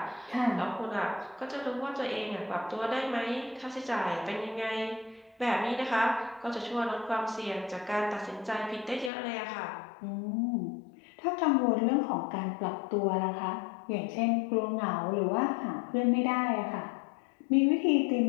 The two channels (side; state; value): right; drops out; at 9.1 s